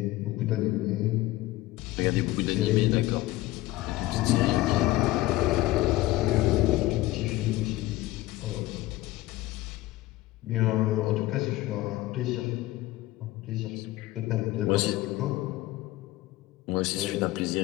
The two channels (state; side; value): quieter; right; 17.6 dB